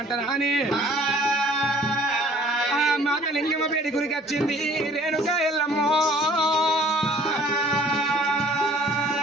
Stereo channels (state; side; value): normal; both; correlation 0.54